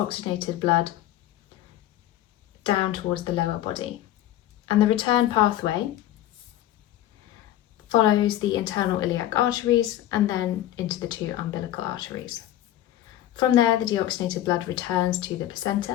blood down towards the lower body. And the return pathway follows the internal iliac arteries and then into the two umbilical arteries. From there, the deoxygenated blood returns to the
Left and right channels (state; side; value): quieter; right; 13.0 dB